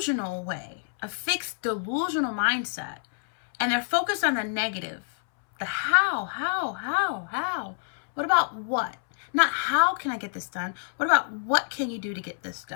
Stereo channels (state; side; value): silent; right; 60 dB below the other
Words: way, a fixed delusional mindset, and they're focused on the negative. The how. What about what? Not how can I get this done? What about what can you do to get this